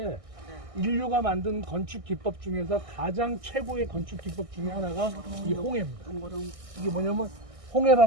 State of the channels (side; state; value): left; late; 1.6 ms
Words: 인류가 만든 건축 기법 중에서 가장 최고의 건축 기법 중에 하나가 이 홍해입니다. 이게 뭐냐면